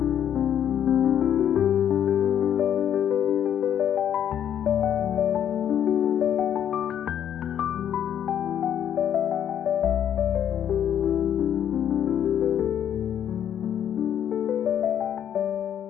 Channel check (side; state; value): right; quieter; 9.7 dB